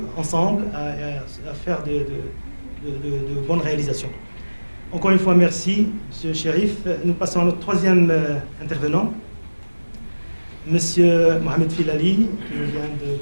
ensemble, à faire de bonnes réalisations. Encore une fois, merci, M. Chérif. Nous passons à notre troisième intervenant. Monsieur Mohamed Filali, qui nous vient de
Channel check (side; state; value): both; inverted; correlation -1.00